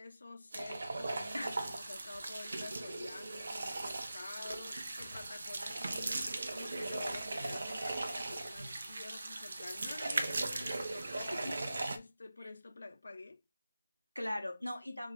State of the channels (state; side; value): inverted; both; correlation -0.94